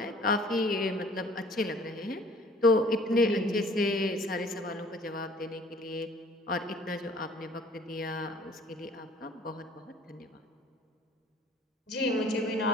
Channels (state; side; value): normal; both; correlation 0.53